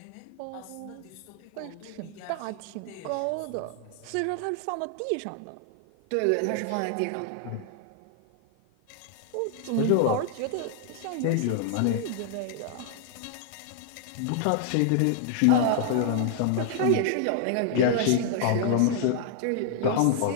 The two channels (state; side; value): different; both; correlation 0.00